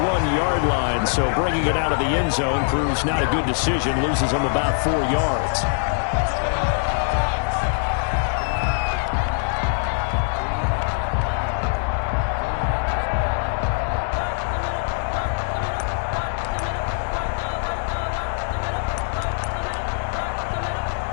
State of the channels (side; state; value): right; silent; 64 dB below the other